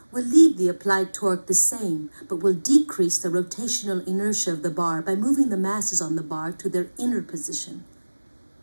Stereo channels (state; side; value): inverted; both; correlation -1.00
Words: we'll leave the applied torque the same, but we'll decrease the rotational inertia of the bar by moving the masses on the bar to their inner position.